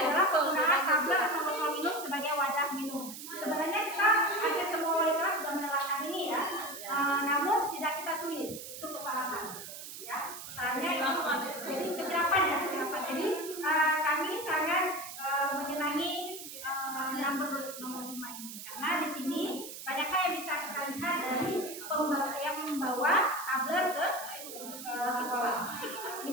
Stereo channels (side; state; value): right; noise; hiss, 11 dB below the sound